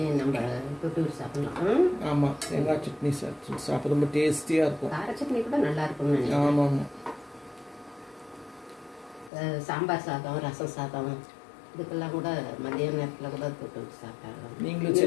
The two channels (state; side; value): drops out; right; at 9.3 s